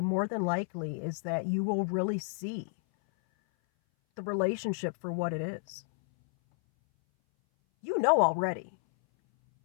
more than likely is that you will really see the relationship for what it is. You know already,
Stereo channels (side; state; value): right; silent; 57 dB below the other